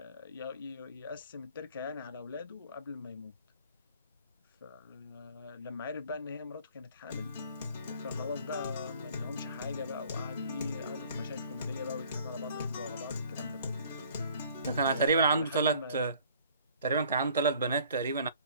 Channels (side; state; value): both; inverted; correlation -0.54